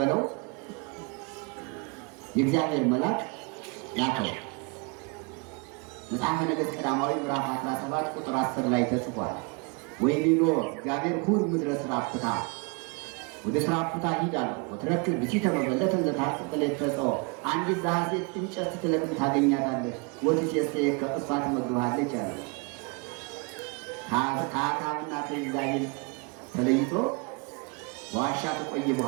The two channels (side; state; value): left; quieter; 32.5 dB